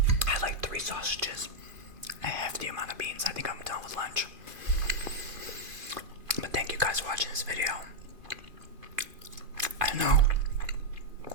I had like 3 sausages. A hefty amount of beans. I think I'm done with lunch. But thank you guys for watching this video. I know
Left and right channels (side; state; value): left; late; 2.5 ms